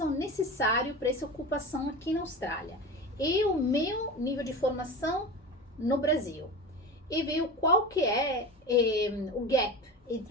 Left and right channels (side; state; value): both; normal; correlation 0.28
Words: necessário para essa ocupação aqui na Austrália. E o meu nível de formação no Brasil. E ver qual que é o gap